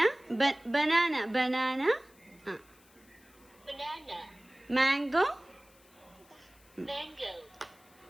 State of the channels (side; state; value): left; noise; hiss, 28 dB below the sound